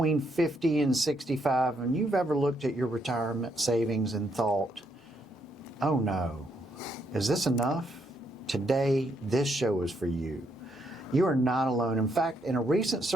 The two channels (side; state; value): both; normal; correlation 0.75